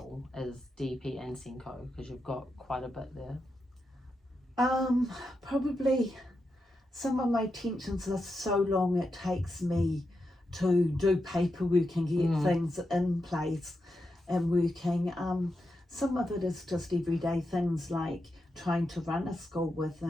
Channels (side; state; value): both; normal; correlation 0.87